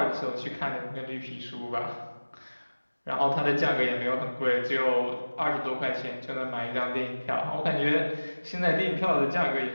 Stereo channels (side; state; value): both; inverted; correlation -1.00